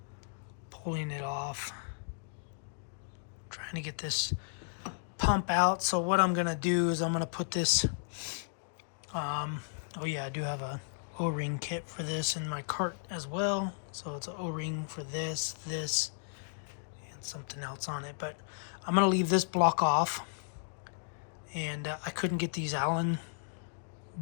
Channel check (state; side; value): silent; right; digital silence